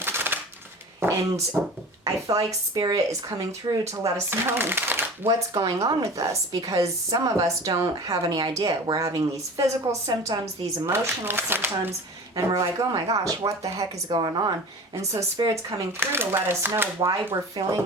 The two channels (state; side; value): normal; both; correlation 0.38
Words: And I feel like Spirit is coming through to let us know what's going on with us, because some of us don't have any idea. We're having these physical symptoms, these emotional symptoms, and we're like, oh my gosh, what the heck is going on? And so Spirit's coming through to let us know why we're